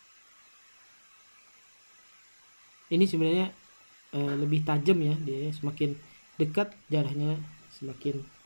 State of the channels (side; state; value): both; inverted; correlation -1.00